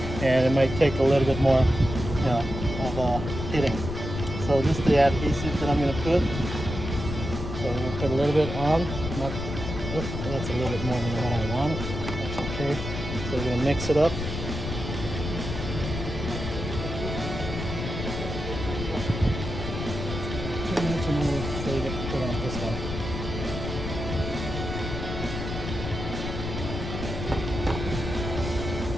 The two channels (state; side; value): noise; left; rumble, 5 dB below the sound